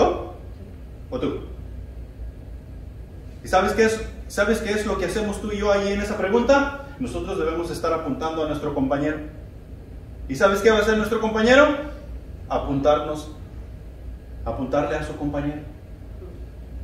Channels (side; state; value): both; identical; correlation 1.00